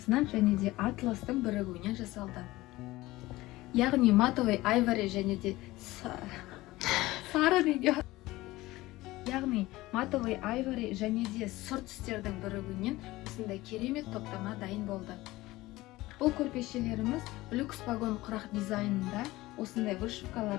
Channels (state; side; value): quieter; right; 18.6 dB